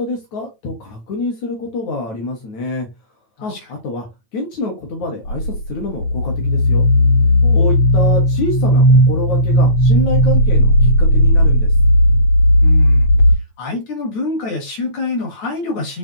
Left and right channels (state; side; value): late; right; 9.0 ms